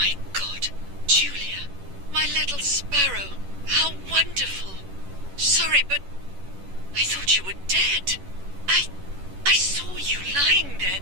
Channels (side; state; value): left; late; 11 ms